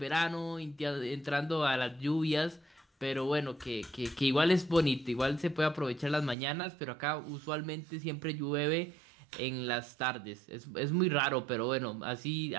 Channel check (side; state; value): left; drops out; at 6.4 s